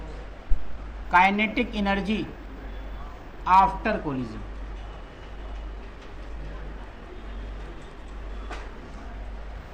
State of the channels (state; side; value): identical; both; correlation 1.00